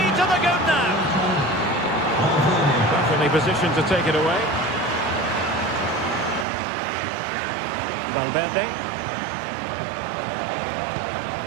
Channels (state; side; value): drops out; left; at 6.5 s